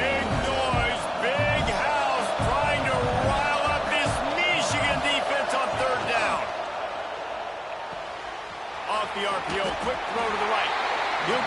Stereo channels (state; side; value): identical; both; correlation 1.00